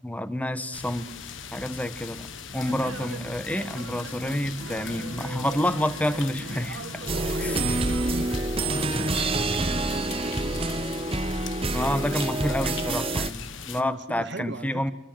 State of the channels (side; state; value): both; normal; correlation 0.73